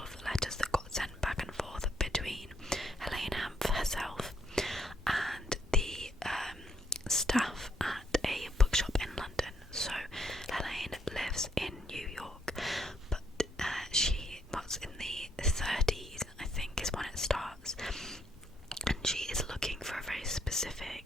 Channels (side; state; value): both; normal; correlation 0.72